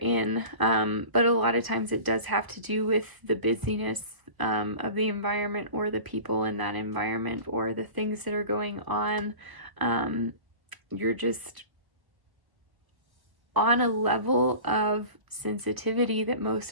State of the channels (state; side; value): late; left; 1.2 ms